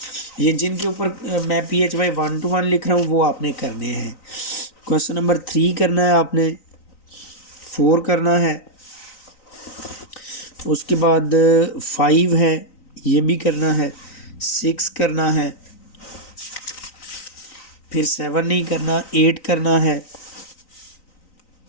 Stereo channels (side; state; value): right; late; 3.9 ms